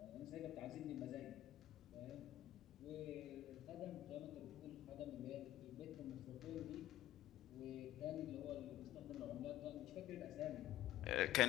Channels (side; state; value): right; quieter; 14.0 dB